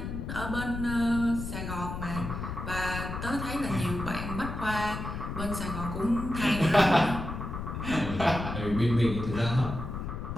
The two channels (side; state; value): left; noise; rumble, 6 dB below the sound